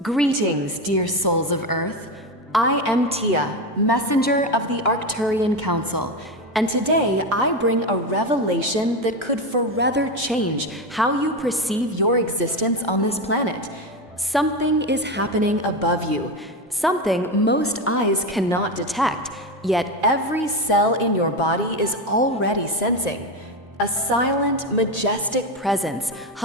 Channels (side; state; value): both; normal; correlation 0.16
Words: Greetings, dear souls of Earth. I am Tia, messenger of the Arcturian Council, and today I bring a revelation that could forever change how you perceive your existence on this planet. Something is happening above you, something most eyes cannot detect, yet every cell in your body is already sensing. A silent, majestic presence